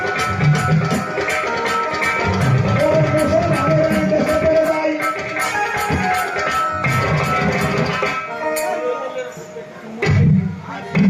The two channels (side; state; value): both; identical; correlation 1.00